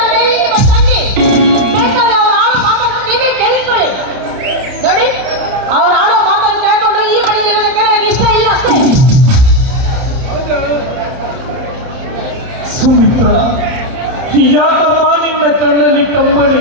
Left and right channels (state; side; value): late; left; 30 ms